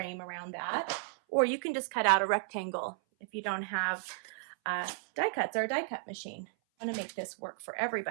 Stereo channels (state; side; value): silent; left; 55 dB below the other